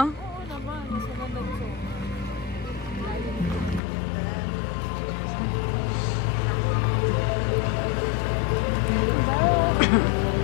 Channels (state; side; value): drops out; right; at 3.8 s